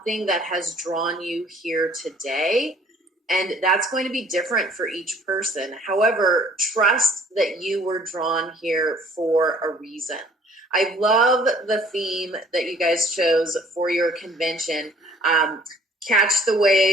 that has drawn you here today. And that's going to be different for each person. However, trust that you were drawn here for a reason. I love the theme that you guys chose for your convention. Catch the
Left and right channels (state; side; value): normal; both; correlation 0.56